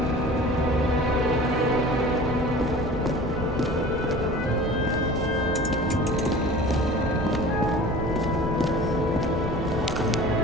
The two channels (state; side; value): normal; both; correlation 0.41